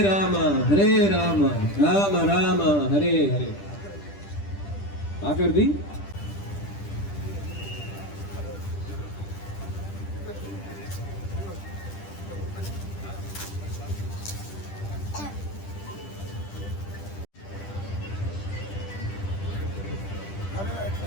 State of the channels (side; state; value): right; late; 10 ms